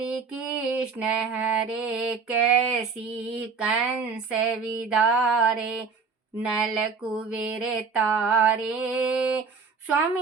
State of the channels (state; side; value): quieter; left; 5.2 dB